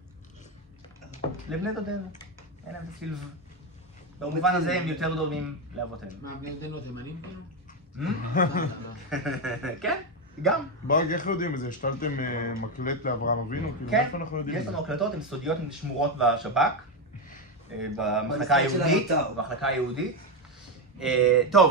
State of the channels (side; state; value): both; normal; correlation 0.09